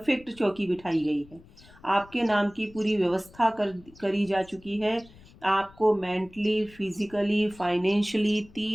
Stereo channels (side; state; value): left; noise; rumble, 24 dB below the sound